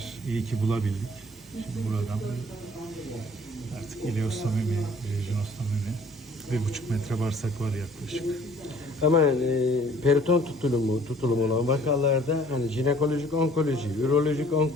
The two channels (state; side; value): normal; both; correlation 0.55